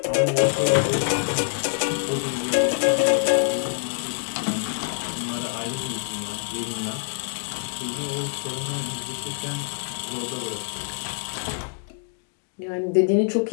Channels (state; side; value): silent; right; digital silence